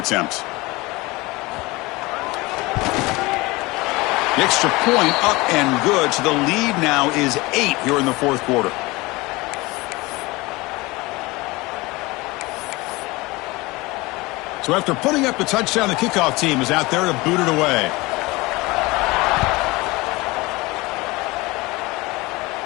The extra point up and good, so the lead now is 8 here in the fourth quarter. So after putting up the touchdown, the kickoff team is out there to boot it away.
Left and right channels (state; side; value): quieter; right; 22.5 dB